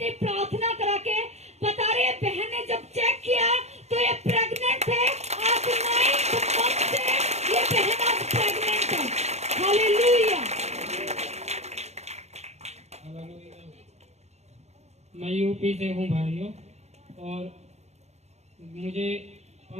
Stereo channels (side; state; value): left; late; 0.32 ms